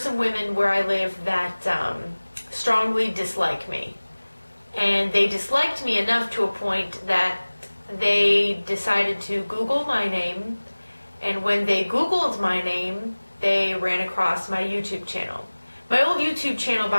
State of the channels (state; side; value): inverted; both; correlation -1.00